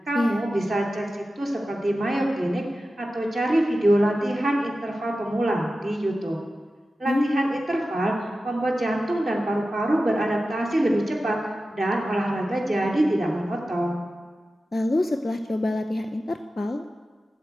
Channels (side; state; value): both; normal; correlation 0.94